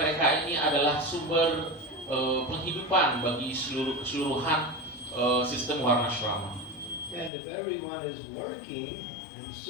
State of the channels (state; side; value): drops out; right; at 7.3 s